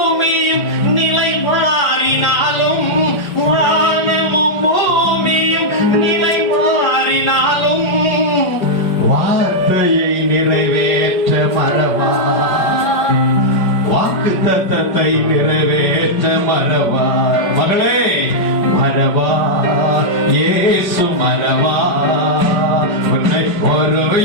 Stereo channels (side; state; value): right; late; 5.0 ms